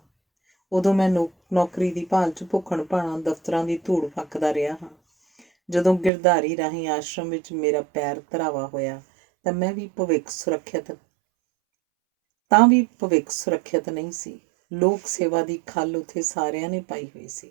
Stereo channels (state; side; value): drops out; left; at 6.1 s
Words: ਉਦੋਂ ਮੈਂ ਨੌਕਰੀ ਦੀ ਭਾਲ 'ਚ ਭੁੱਖਣ ਭਾਣਾ ਦਫ਼ਤਰਾਂ ਦੀ ਧੂੜ ਫੱਕਦਾ ਰਿਹਾ ਹਾਂ। ਜਦੋਂ ਗਿਰਧਾਰੀ ਰਾਹੀਂ ਆਸ਼ਰਮ ਵਿੱਚ ਮੇਰਾ ਪੈਰ ਧਰਾਵਾ ਹੋਇਆ ਤਾਂ ਵੀ ਭਵਿੱਖ ਸੁਰੱਖਿਅਤ ਨਹੀਂ ਸੀ। ਲੋਕ ਸੇਵਾ ਦੀ ਖੱਲ ਉੱਥੇ ਸਾਰਿਆਂ ਨੇ ਪਾਈ ਹੋਈ ਸੀ,